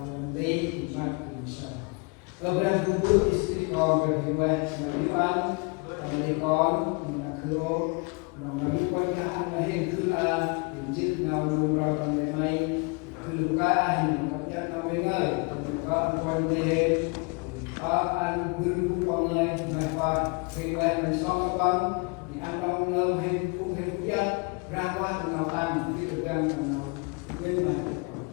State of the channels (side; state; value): right; quieter; 31.1 dB